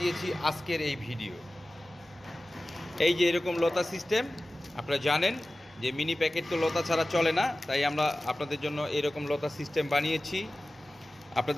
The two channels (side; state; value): both; normal; correlation 0.96